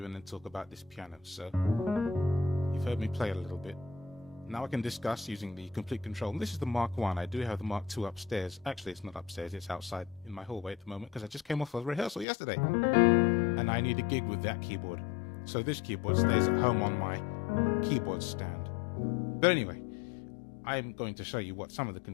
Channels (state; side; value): drops out; right; at 12.2 s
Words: and then talk about this piano. So you've heard me play a little bit. Now I can discuss using the complete control. And this is the Mark 1. I do have the Mark 2 upstairs. Actually, it's not upstairs. It's outside in my hallway at the moment because I just came off a rehearsal yesterday. And I need a gig with that keyboard. So this keyboard stays at home on my keyboard stand. But anyway, I'm going to show you what some of the